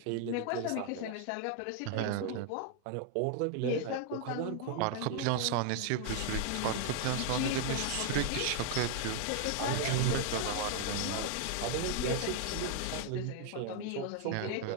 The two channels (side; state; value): both; different; correlation 0.00